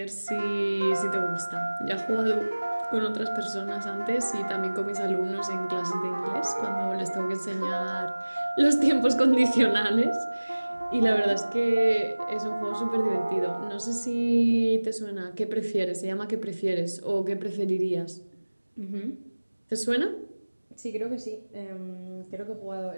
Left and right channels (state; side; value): inverted; both; correlation -1.00